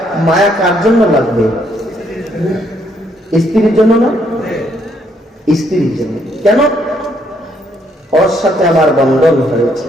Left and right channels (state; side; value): normal; both; correlation 0.71